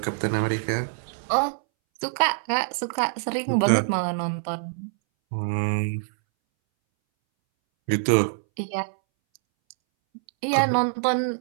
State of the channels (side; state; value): left; silent; 61 dB below the other